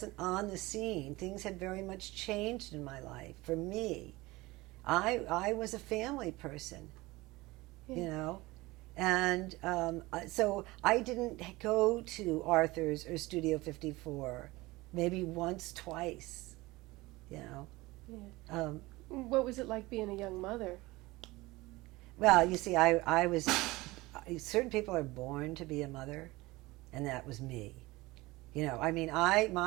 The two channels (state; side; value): quieter; left; 20.8 dB